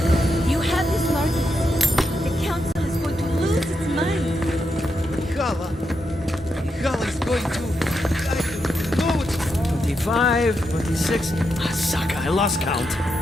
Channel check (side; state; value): both; normal; correlation 0.84